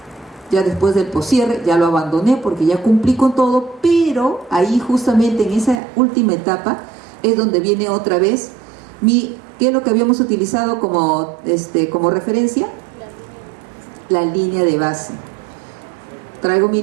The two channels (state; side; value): drops out; left; at 5.8 s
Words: Ya después del poscierre ya lo abandoné porque ya cumplí con todo, pero ahí justamente en esa última etapa es donde viene otra vez ¿qué es lo que habíamos utilizado como referencia? La línea de base. Traigo mi